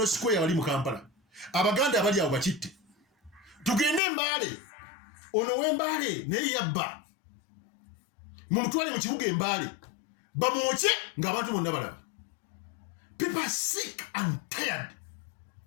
Square wali mu Kampala abaganda abali awo bakitte tugende Mbale ono w'Embale naye yabba mumutwale mu kibuga Embale bamwoche ng'abantu bonna balaba. People are sick and tired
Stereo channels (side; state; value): right; drops out; at 4.0 s